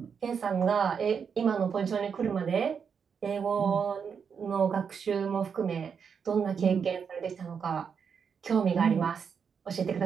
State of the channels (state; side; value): quieter; left; 6.6 dB